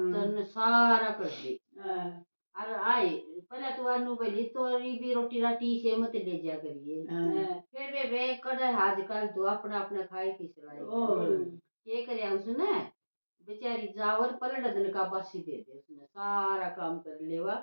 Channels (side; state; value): both; inverted; correlation -1.00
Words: सारा कर दी और आए पहले तो अनु बोली तोरी भी रोटी राटी से मत ले जा करिए फिर बेबे कड़े आजकल तो अपना अपना खाए की सलाई ये करे उसने बेचारी जावर पलट दिन का बासी दे दे उसने सारा काम कर लेवा